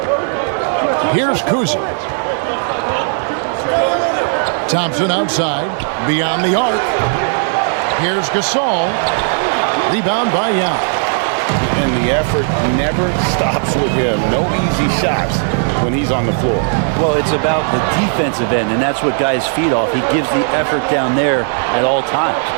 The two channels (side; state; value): left; silent; 58 dB below the other